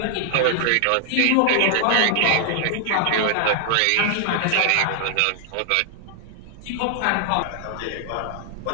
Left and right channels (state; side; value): different; both; correlation 0.00